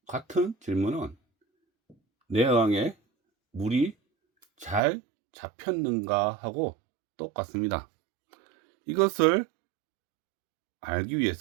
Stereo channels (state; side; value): drops out; left; at 4.8 s